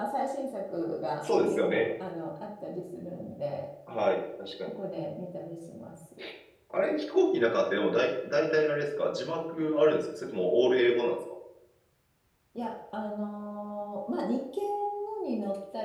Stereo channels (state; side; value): identical; both; correlation 1.00